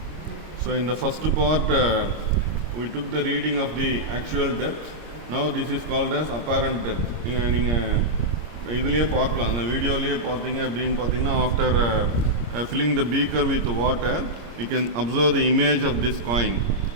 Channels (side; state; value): left; late; 26 ms